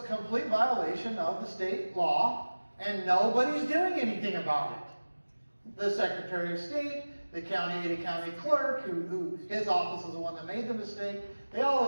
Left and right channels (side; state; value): both; inverted; correlation -1.00